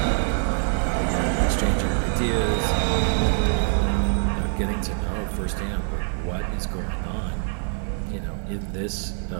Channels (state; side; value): silent; left; 62 dB below the other